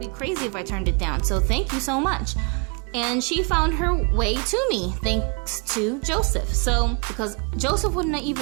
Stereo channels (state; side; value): quieter; left; 35.6 dB